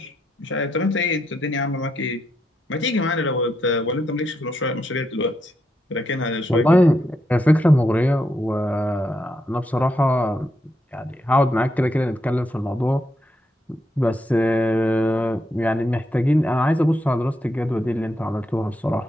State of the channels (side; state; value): both; normal; correlation 0.81